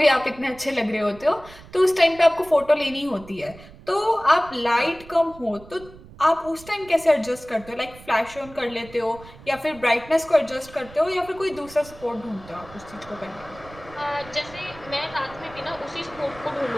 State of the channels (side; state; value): right; noise; rumble, 20 dB below the sound